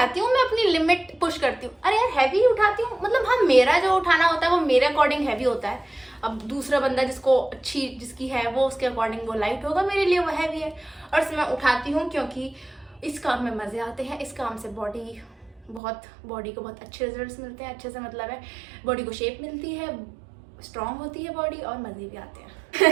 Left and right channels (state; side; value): drops out; left; at 15.8 s